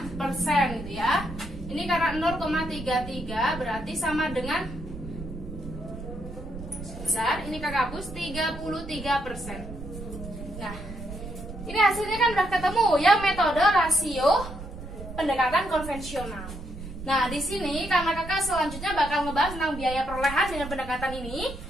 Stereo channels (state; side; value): noise; right; rumble, 11 dB below the sound